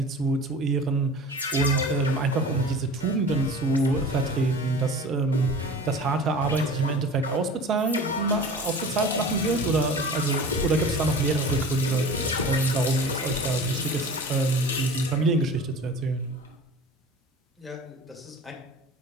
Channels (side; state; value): both; normal; correlation 0.38